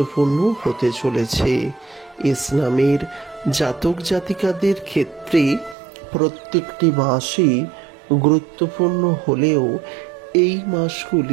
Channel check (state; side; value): drops out; left; at 5.8 s